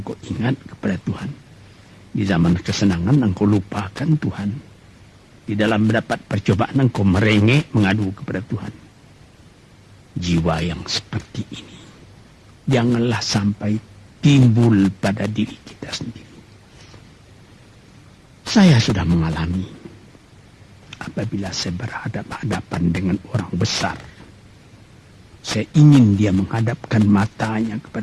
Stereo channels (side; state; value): both; identical; correlation 1.00